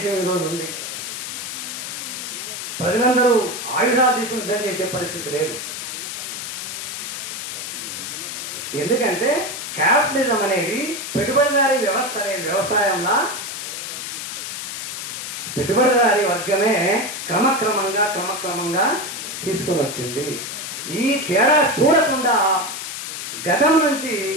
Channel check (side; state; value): left; noise; hiss, 6 dB below the sound